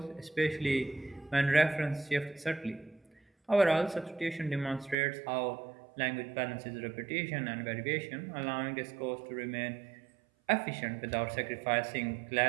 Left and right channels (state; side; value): drops out; left; at 5.0 s